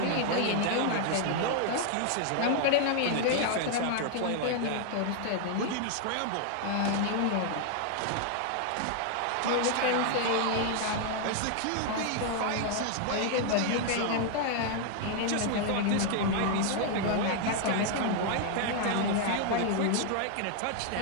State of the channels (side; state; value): both; different; correlation 0.00